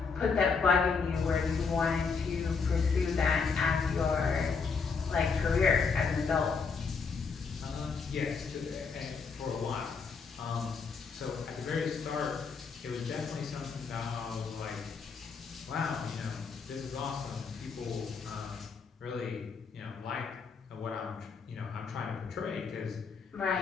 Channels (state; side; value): quieter; right; 5.3 dB